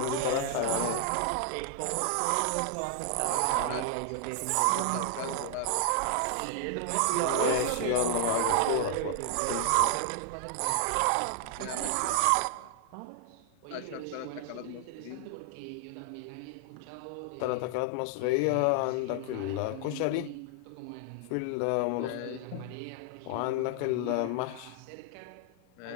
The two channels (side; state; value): both; different; correlation 0.00